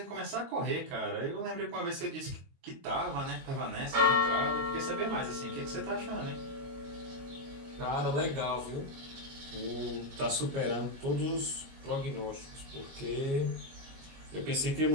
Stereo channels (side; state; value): left; late; 22 ms